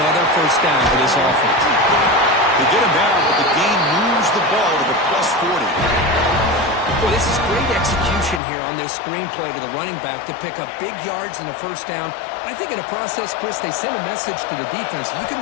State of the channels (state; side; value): drops out; right; at 8.4 s